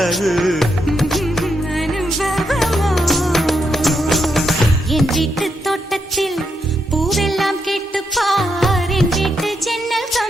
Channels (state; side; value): normal; both; correlation 0.81